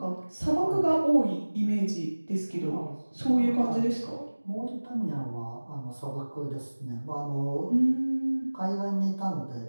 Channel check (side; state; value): both; inverted; correlation -1.00